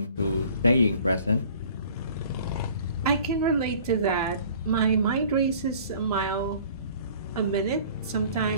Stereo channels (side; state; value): both; inverted; correlation -0.50